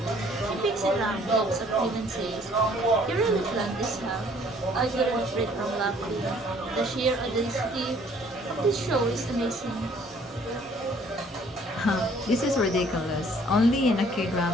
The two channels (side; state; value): both; normal; correlation 0.59